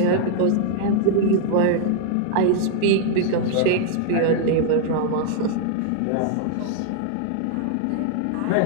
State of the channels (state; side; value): different; both; correlation 0.00